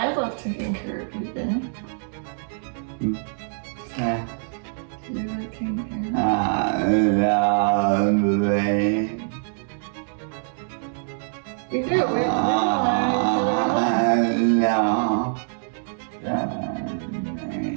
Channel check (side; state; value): left; silent; digital silence